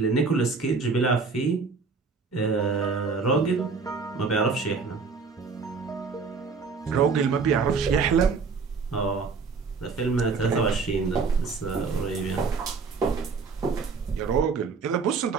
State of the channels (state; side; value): quieter; left; 4.9 dB